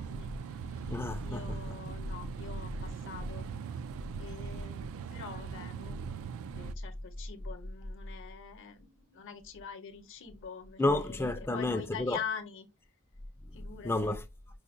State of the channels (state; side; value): normal; both; correlation 0.66